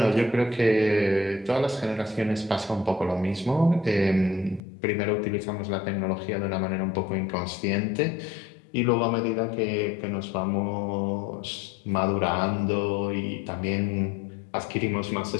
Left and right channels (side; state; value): right; drops out; at 4.6 s